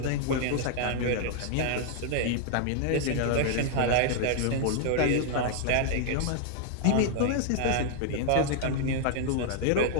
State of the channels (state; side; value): different; both; correlation 0.00